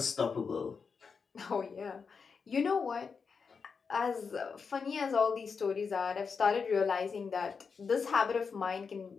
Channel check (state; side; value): quieter; right; 5.5 dB